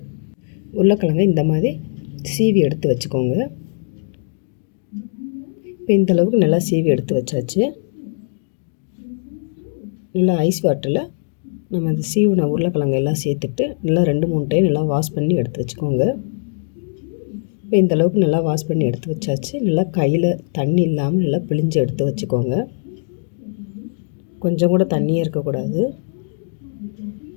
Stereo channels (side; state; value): right; silent; 66 dB below the other